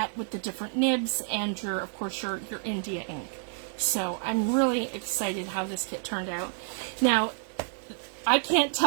with the different nibs and of course your India ink. So I'm really excited how this kit turned out. Now, I can't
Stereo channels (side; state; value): left; silent; digital silence